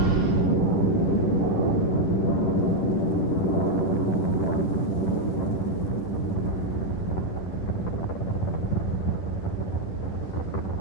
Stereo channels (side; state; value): right; late; 10 ms